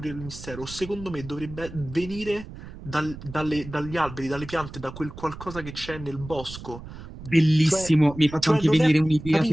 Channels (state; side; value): noise; right; rumble, 13 dB below the sound